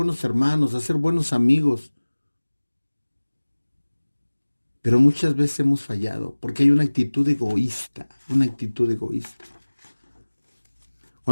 hermanos, a ser buenos amigos. Pero muchas veces hemos fallado porque hay una actitud egoísta, una actitud egoísta.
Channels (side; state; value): both; inverted; correlation -1.00